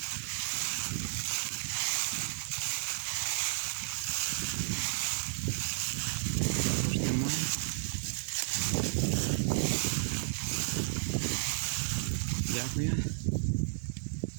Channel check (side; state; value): left; silent; digital silence